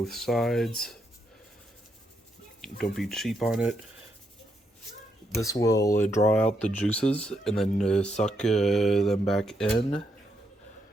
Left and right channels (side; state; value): both; normal; correlation 0.79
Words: sides. Don't be cheap on it. This will draw out the juices and then suck them back in,